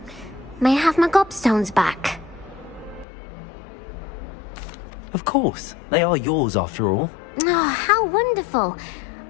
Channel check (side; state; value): right; drops out; at 3.1 s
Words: may I have my gobstones back? Of course. They are yours after all. Oh, how wonderful.